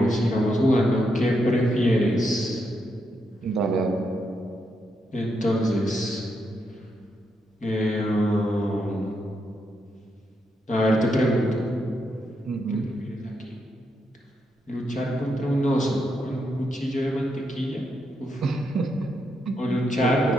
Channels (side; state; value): both; normal; correlation 0.81